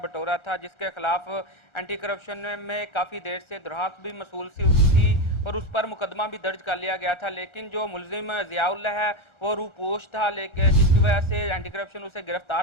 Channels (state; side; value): late; right; 1.4 ms